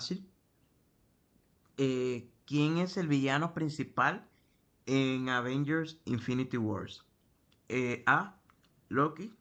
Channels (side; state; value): both; identical; correlation 1.00